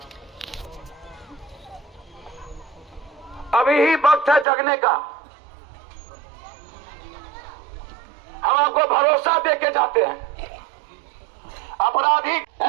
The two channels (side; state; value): left; drops out; at 4.5 s